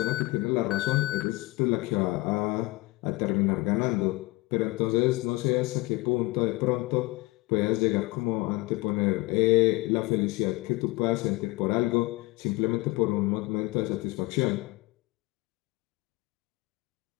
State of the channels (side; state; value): right; quieter; 22.0 dB